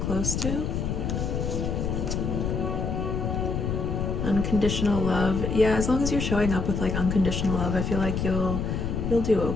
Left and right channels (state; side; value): noise; left; rumble, 1 dB below the sound